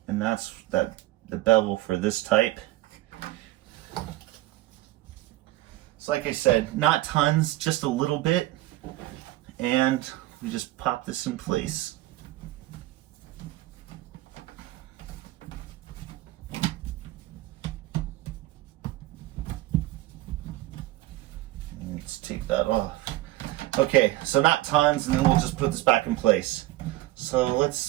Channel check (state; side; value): quieter; left; 17.0 dB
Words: and that's the bevel for this type. So like I said, not tons, just a little bit, and we just pop this in place. Let's take that off. Okay, so not tons, and then we'll just put this back in place. So